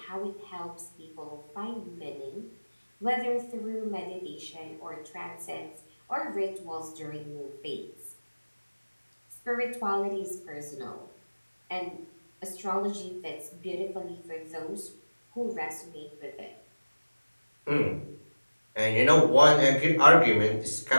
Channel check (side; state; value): both; inverted; correlation -1.00